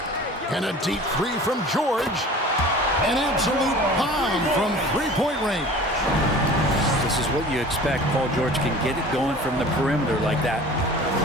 And a deep three from George. An absolute bomb from three-point range. This is what you expect. Paul George can get it going from the perimeter like that.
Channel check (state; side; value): normal; both; correlation 0.43